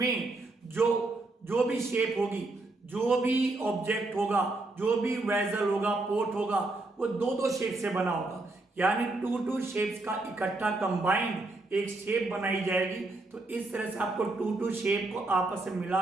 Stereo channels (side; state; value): left; quieter; 3.0 dB